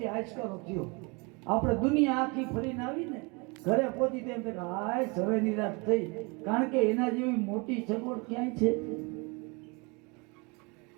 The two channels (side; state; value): left; quieter; 29.5 dB